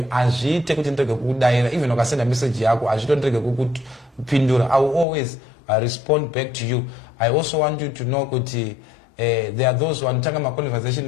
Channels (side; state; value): right; drops out; at 5.1 s